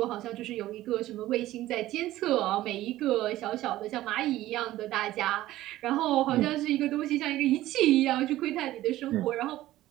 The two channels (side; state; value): left; quieter; 15.4 dB